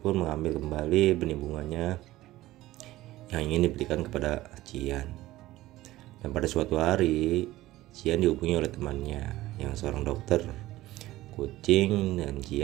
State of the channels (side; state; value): left; quieter; 16.6 dB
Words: pun mengambil kembali benih bunganya yang ingin diberikan kepada Cian. Dan pada suatu hari, Cian dihubungi oleh temannya yang seorang dokter kucing dan